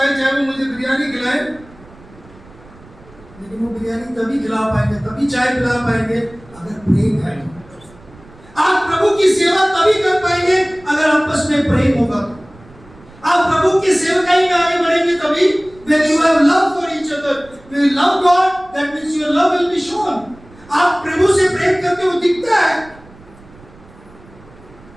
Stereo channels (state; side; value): noise; right; rumble, 24 dB below the sound